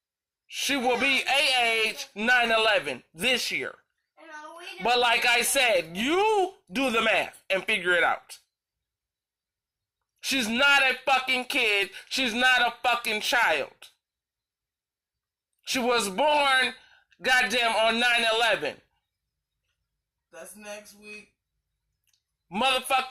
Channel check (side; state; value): both; identical; correlation 1.00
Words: She will be age 9/11 this year. But like I said, you do the math and figure it out. She's not a fucking kid. She's not a fucking child. She was born, goddamn, on 9/11. That's next week.